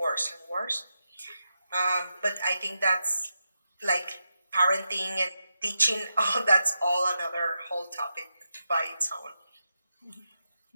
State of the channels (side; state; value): both; inverted; correlation -0.87